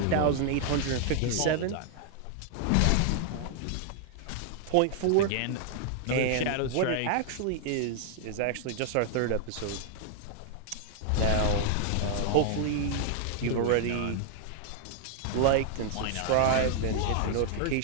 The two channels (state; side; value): different; both; correlation 0.00